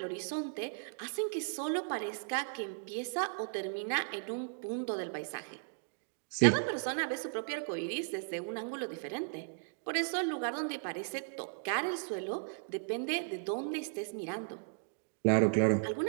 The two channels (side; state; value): left; silent; digital silence